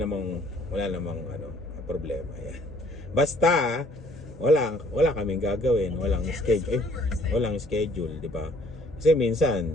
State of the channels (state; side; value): normal; both; correlation 0.60